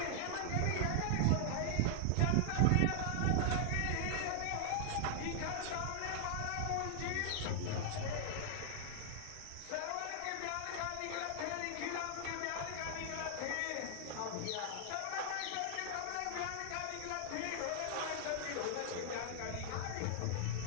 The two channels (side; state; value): both; different; correlation 0.00